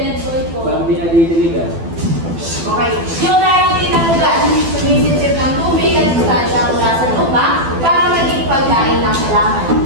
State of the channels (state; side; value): late; left; 12 ms